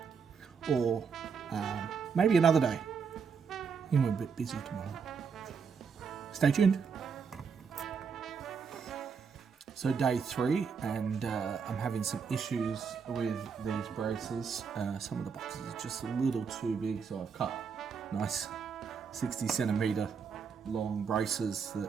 or maybe another day. I think we're a bit busy tomorrow. Stay tuned. So day 3, and I'm having some issues with these braces. Some of the boxes are just a little too big, so I've cut nice 60 centimeter long braces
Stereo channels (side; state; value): left; quieter; 6.1 dB